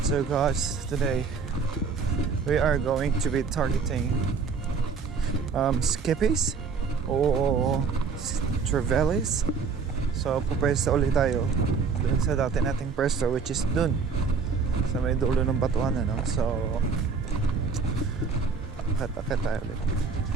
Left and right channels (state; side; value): quieter; left; 5.3 dB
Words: So guys, today we are going to be targeting skippies o trevallies. So pupwesto ulit tayo dun sa dati nating pwesto, which is dun sa may dulo ng batuan, ano? So akit tayo ulit.